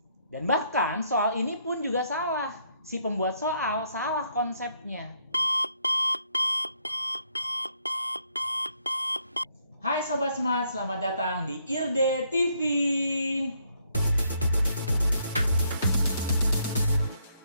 Dan bahkan soal ini pun juga salah. Si pembuat soal salah konsepnya. Hai Sobat Smart, selamat datang di IRDE TV.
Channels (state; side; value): inverted; both; correlation -0.72